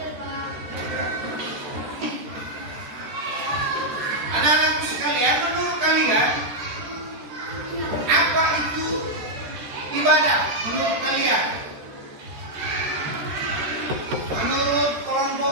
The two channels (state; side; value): late; left; 13 ms